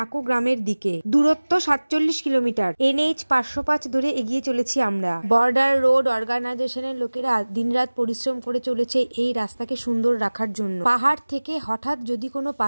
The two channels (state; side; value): inverted; both; correlation -1.00